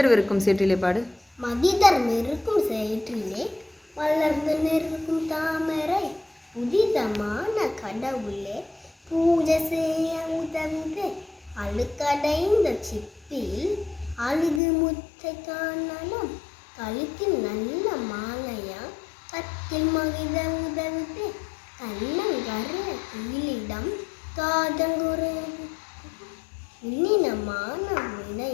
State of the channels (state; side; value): drops out; right; at 14.6 s